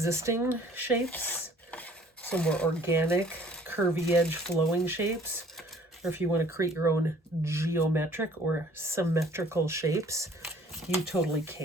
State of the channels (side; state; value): both; normal; correlation 0.55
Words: shapes, some more organic, curvy edge flowing shapes, or if you want to create your own geometric or symmetrical shapes, you totally